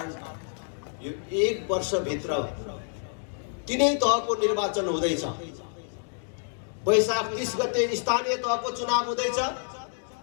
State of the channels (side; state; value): right; silent; digital silence